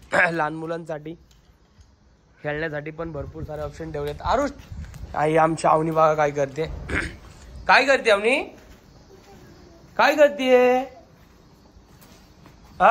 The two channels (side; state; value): both; identical; correlation 1.00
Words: लहान मुलांसाठी खेळण्यासाठी पण भरपूर सारे ऑप्शन ठेवलेत. आरुष आई आमची आवनी बघा काय करते. काय करते आवनी? काय करते?